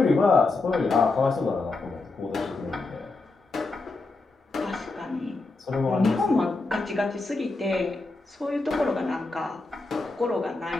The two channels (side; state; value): right; quieter; 3.5 dB